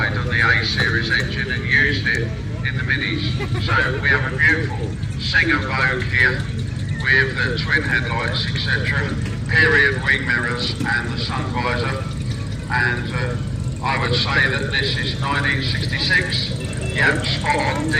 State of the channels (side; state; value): both; identical; correlation 1.00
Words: on the A-Series engine and used it in the Minis. So we have a beautiful Singer Vogue here with the twin headlights, etc., period wing mirrors and the sun visor. And I would say that this is 1966. Yep, spot on,